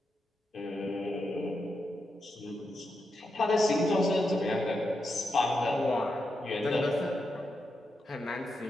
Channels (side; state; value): both; normal; correlation 0.86